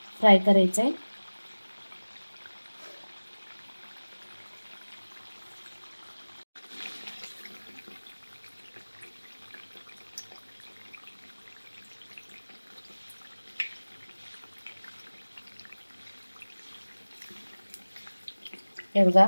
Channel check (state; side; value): inverted; both; correlation -1.00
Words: फ्राय करायचं आहे. हे बघा,